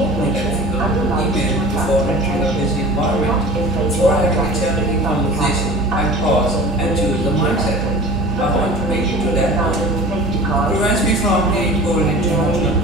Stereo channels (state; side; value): noise; right; hum, 6 dB below the sound